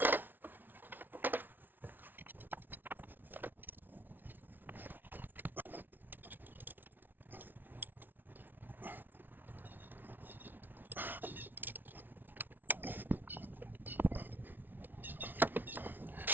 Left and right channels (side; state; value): left; late; 0.091 ms